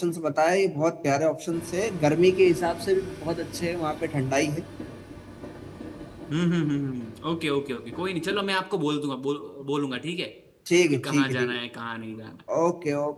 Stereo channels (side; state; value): both; identical; correlation 1.00